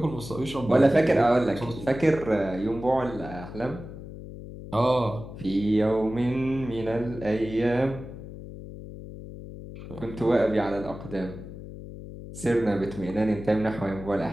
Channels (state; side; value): noise; left; hum, 12 dB below the sound